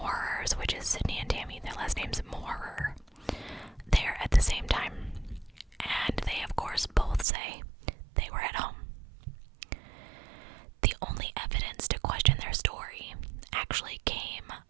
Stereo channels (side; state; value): left; drops out; at 7.2 s